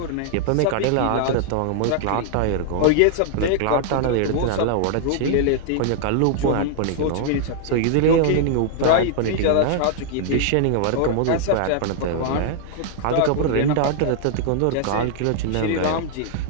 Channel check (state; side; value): different; both; correlation -0.01